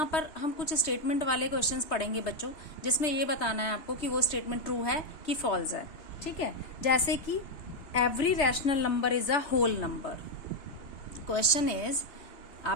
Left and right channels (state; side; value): late; right; 3.2 ms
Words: पर हम कुछ स्टेटमेंट वाले क्वेश्चंस पढ़ेंगे बच्चों, जिसमें ये बताना है आपको कि वो स्टेटमेंट ट्रू है कि फॉल्स है. ठीक है, जैसे कि every rational number is a whole number. Question is,